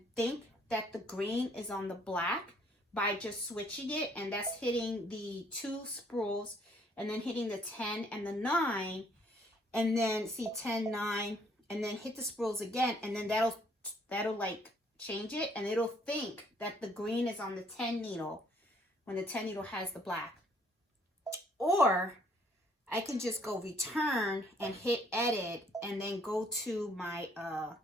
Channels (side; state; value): both; normal; correlation 0.64